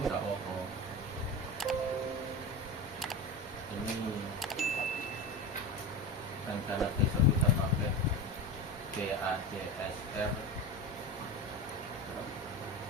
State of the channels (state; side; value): normal; both; correlation 0.25